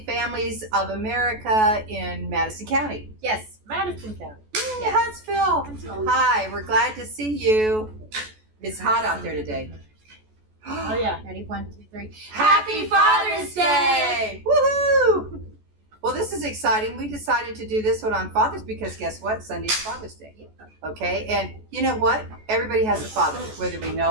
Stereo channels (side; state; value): left; late; 14 ms